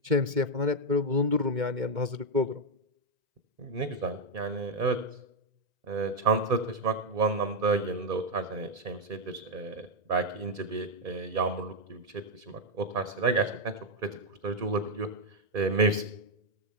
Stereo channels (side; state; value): left; late; 2.4 ms